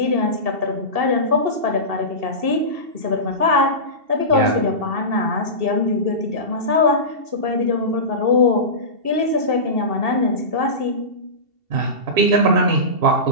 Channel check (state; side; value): late; left; 2.7 ms